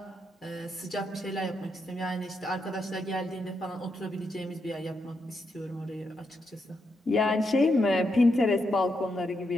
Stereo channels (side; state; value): both; normal; correlation 0.82